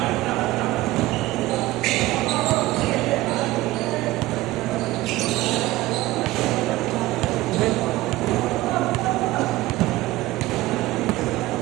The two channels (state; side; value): quieter; left; 17.7 dB